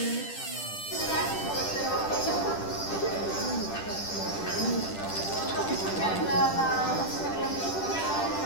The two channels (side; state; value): right; late; 10 ms